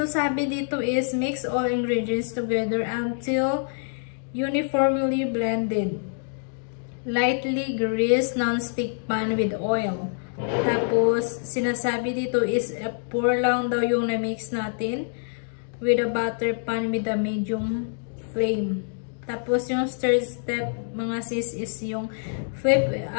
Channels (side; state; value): right; silent; digital silence